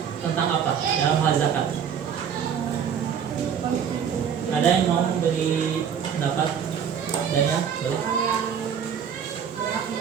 tentang apa dalam hal zakat? Ada yang mau beri pendapat? Daniel, boleh?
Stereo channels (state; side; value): quieter; left; 7.8 dB